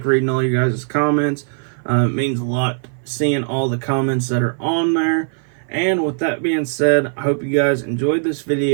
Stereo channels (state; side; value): silent; left; 56 dB below the other